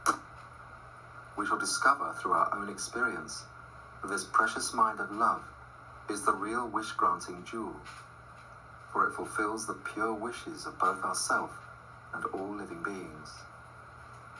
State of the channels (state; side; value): identical; both; correlation 1.00